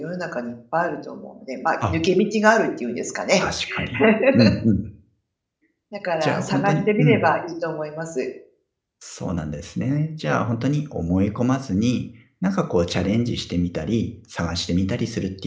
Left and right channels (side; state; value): both; identical; correlation 1.00